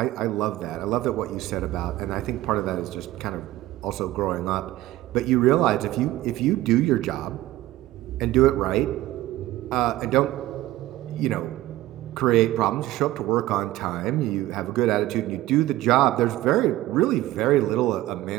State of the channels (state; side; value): quieter; left; 16.1 dB